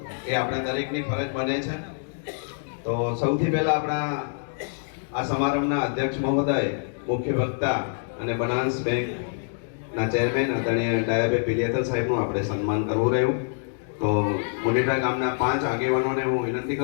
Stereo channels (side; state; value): right; silent; digital silence